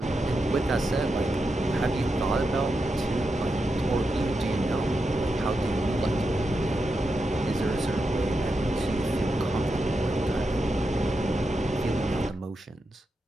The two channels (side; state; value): both; normal; correlation 0.87